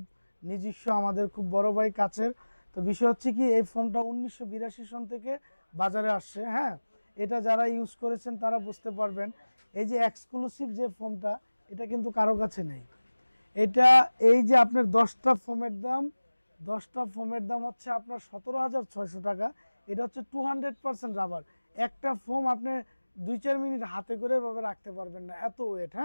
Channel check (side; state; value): both; inverted; correlation -1.00